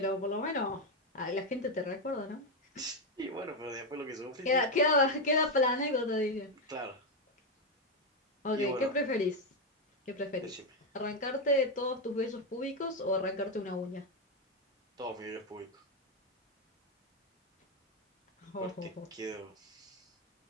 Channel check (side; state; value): both; normal; correlation 0.06